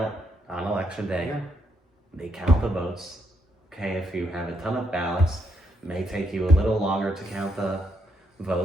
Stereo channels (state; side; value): normal; both; correlation 0.76